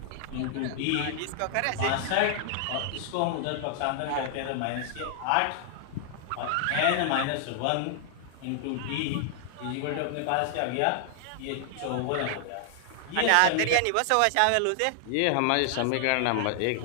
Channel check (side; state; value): both; different; correlation 0.00